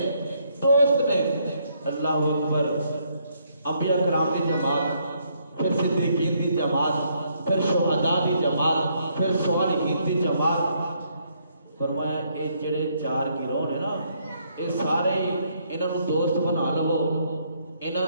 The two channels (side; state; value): both; inverted; correlation -0.72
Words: دوست نے۔ اللہ اکبر، انبیاء کرام دی جماعت، پھر صدیقین دی جماعت، پھر شہداء دی جماعت، پھر صالحین دی جماعت۔ فرمایا یہ جڑے چار گروہ نے نا، یہ سارے انہاں نوں دوست بنا لو، انہاں